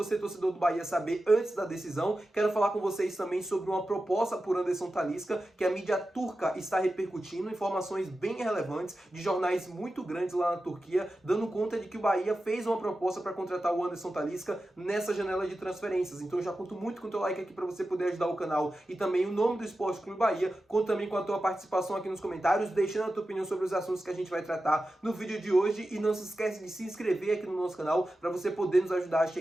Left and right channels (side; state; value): both; normal; correlation 0.93